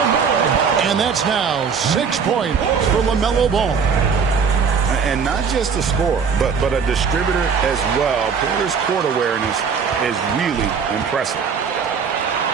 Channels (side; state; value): left; quieter; 6.1 dB